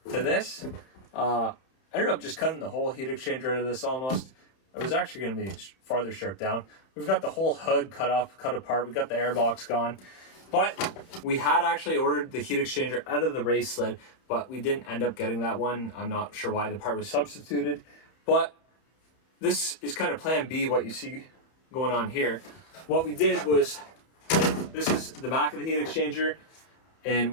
to this. I ended up just cutting the whole heat exchanger out of this almost. It was actually going to be farther stripped down. We've got the whole hood cut apart. We got the airbox gone. But we had actually ordered the heat exchanger out of the race sled, but we didn't end up getting that one. I'm not sure why the part was substituted. But this is kind of plan B, what you see going on here. What we did was, this is the back of the heat exchanger, and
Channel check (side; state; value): right; late; 31 ms